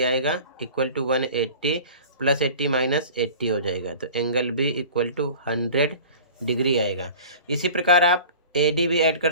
आएगा इक्वल टू 180 + 80 - 80 हो जाएगा, तो angle B equal to 100 degree आएगा। इसी प्रकार आप AD भी ऐड कर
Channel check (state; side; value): inverted; both; correlation -0.41